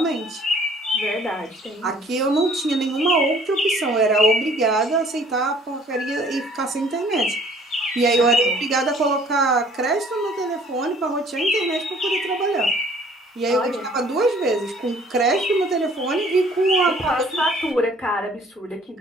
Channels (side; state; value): both; normal; correlation 0.56